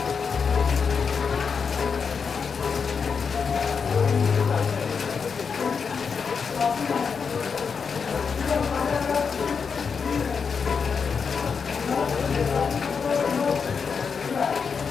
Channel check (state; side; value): quieter; right; 5.8 dB